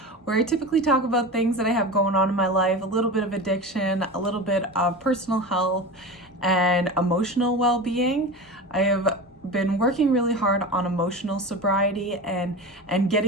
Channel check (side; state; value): both; normal; correlation 0.28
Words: where I typically talk about things that I have going on in my life, a little bit of addiction, a little bit of personal health, and emotional well-being. I have been working really hard on emotional sobriety and